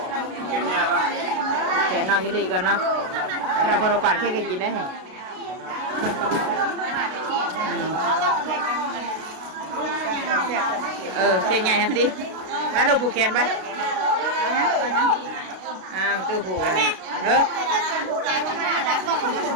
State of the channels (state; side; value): late; left; 32 ms